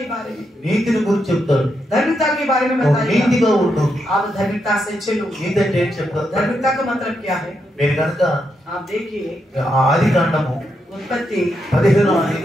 बारे में. నీతిని గురించి చెప్తాడు. धार्मिकता के बारे में నువ్వు बताएगा. నీతిగా ఉండు. आप धार्मिकता से चलो. నీతి అంటే ఏం చెప్తారు, धार्मिकता का मतलब क्या है. మీరు కనుక आप देखिए ఆది కాండము उत्पत्ति 15వ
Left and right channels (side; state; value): both; normal; correlation 0.82